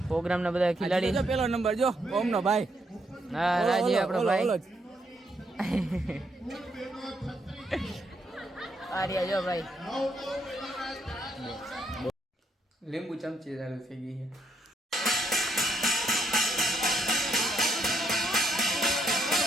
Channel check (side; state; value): both; normal; correlation 0.75